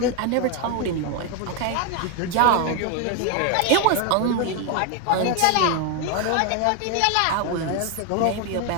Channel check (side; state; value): both; different; correlation 0.01